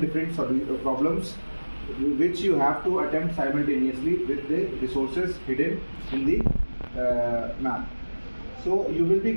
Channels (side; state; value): both; inverted; correlation -1.00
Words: problems which you have to attempt simultaneously with the resources hidden in the map. So you will be